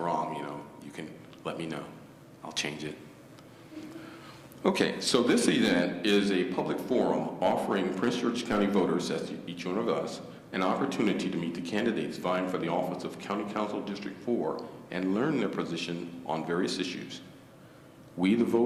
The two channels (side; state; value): both; identical; correlation 1.00